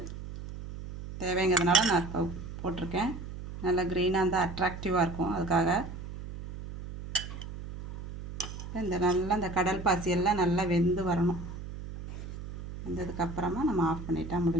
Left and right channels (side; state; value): right; noise; hum, 10 dB below the sound